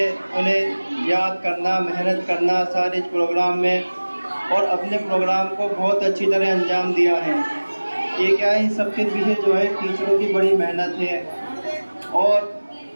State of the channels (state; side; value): inverted; both; correlation -1.00